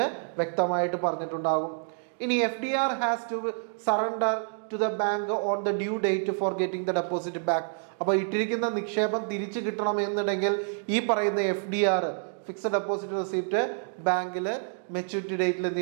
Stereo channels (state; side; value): silent; left; digital silence